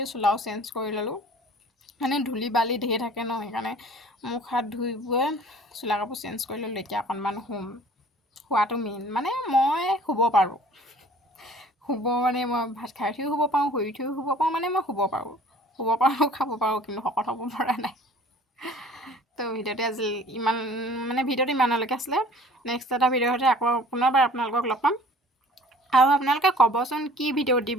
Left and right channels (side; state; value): both; normal; correlation 0.49